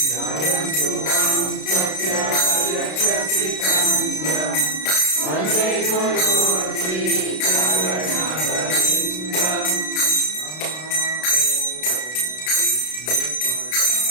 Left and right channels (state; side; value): late; right; 32 ms